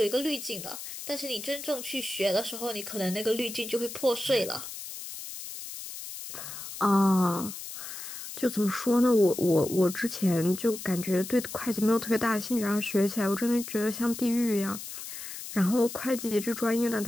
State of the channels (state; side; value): noise; left; hiss, 10 dB below the sound